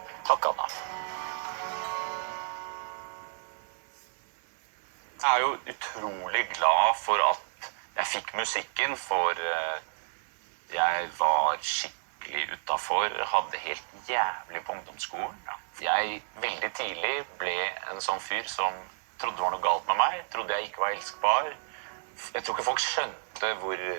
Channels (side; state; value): left; silent; 57 dB below the other